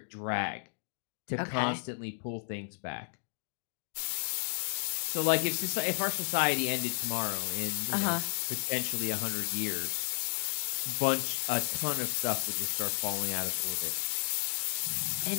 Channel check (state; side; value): silent; right; digital silence